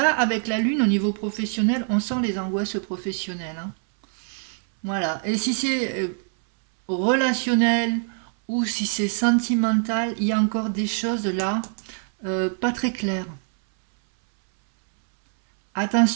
avec la lune au niveau professionnel, on sent les angoisses professionnelles, hein. Voilà. Et si c'est relationnel ou si c'est sentimental, il y a encore des choses là pas très claires.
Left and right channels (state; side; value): silent; left; 63 dB below the other